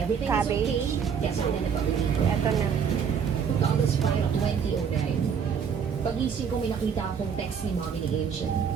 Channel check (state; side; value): quieter; left; 7.0 dB